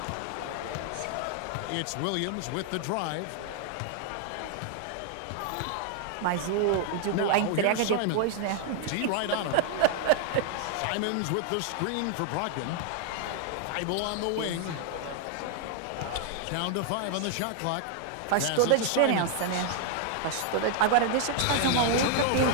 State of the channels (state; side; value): different; both; correlation 0.00